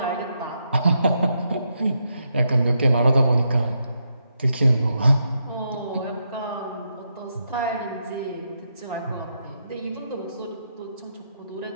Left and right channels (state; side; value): inverted; both; correlation -0.81